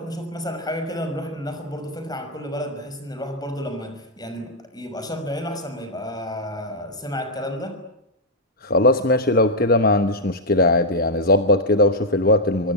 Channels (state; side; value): normal; both; correlation -0.03